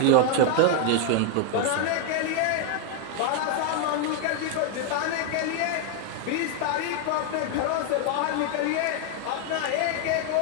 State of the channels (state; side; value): different; both; correlation 0.00